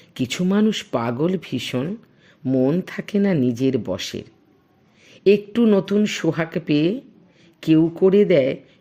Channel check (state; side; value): identical; both; correlation 1.00